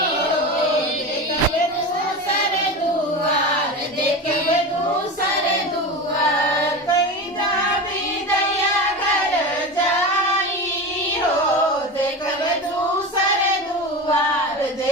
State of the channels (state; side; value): normal; both; correlation 0.26